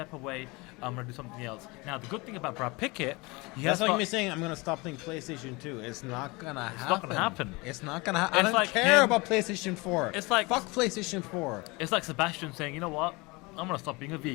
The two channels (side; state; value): right; quieter; 25.2 dB